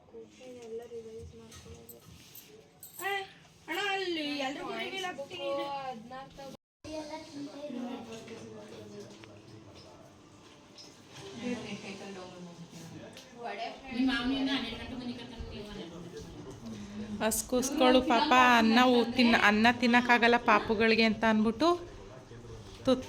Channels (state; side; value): identical; both; correlation 1.00